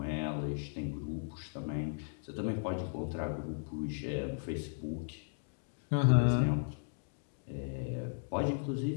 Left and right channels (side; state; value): right; silent; digital silence